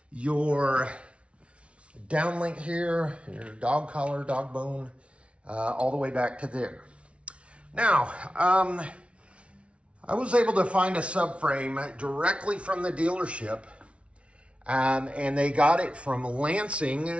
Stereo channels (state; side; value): late; left; 0.061 ms